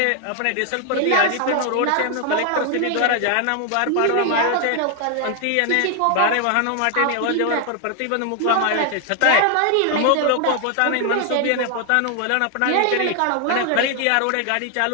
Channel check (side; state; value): both; different; correlation 0.00